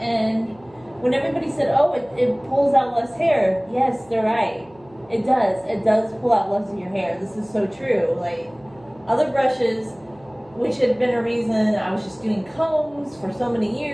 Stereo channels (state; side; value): noise; right; hum, 27 dB below the sound